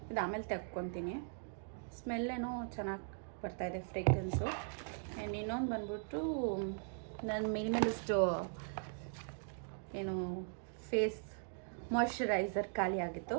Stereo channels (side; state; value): left; silent; digital silence